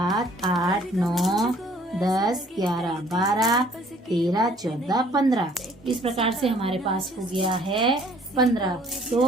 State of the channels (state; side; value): normal; both; correlation 0.58